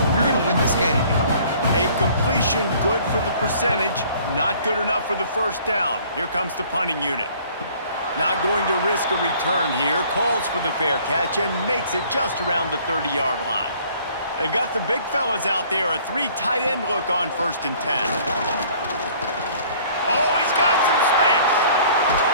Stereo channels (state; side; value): inverted; both; correlation -0.55